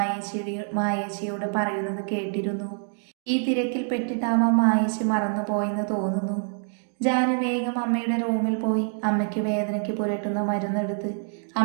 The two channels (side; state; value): left; silent; 61 dB below the other